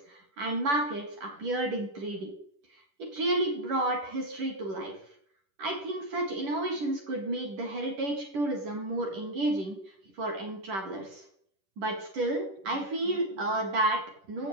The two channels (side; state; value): left; late; 10 ms